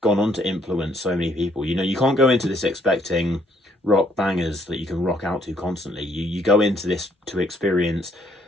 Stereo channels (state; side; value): normal; both; correlation 0.67